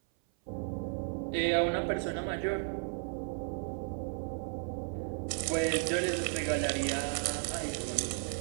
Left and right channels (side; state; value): left; silent; 55 dB below the other